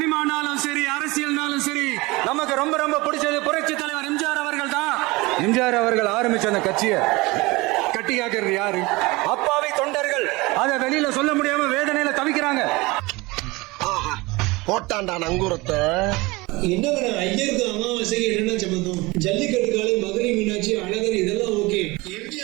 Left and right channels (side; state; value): left; quieter; 23.0 dB